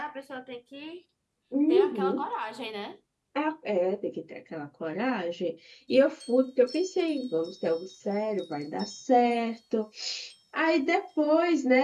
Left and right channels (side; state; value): both; identical; correlation 1.00